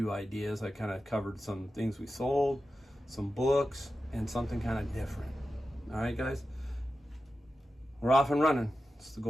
ideas. I kind of covered some things we sold, some books, and something kind of different. All right, guys, we're off and running. It's the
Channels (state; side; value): normal; both; correlation 0.92